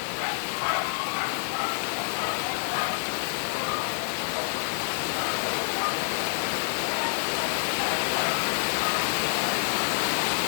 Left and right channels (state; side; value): silent; right; 60 dB below the other